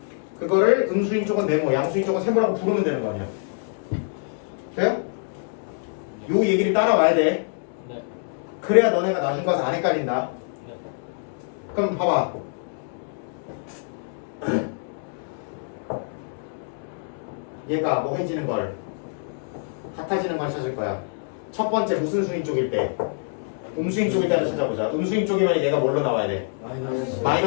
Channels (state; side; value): silent; right; digital silence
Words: 그거를 음수인 쪽은 네모, 양수인 쪽은 세모라고 부르면 되는 거 아니야. 돼요? 요 얘기를 따라와야 돼. 네. 그래야 너네가 나중 가서 안 헷갈린다. 네. 그럼 봐봐. 얘가 뭐 해지는 걸 같아지는 걸 찾을 거야. 첫 번째 무슨 수인 쪽일 때? 음수인 쪽일 때 하나 찾아보자. 음수인 쪽이면 얘가 뭘로 나와야 돼?